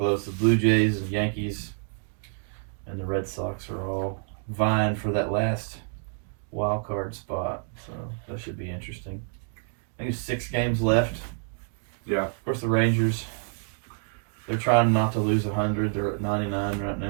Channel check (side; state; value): left; silent; 57 dB below the other